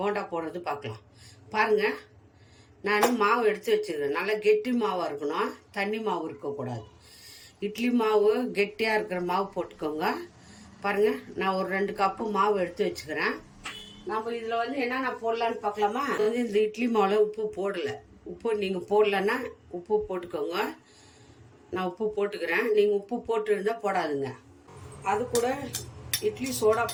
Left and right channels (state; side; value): identical; both; correlation 1.00